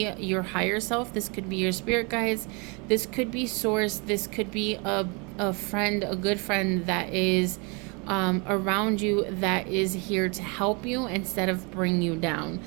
your higher self, this could be your spirit guides, this could be source, this could be a friend, a good friend that is around you, that is here to help you instead of bring you down.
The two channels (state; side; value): quieter; left; 31.5 dB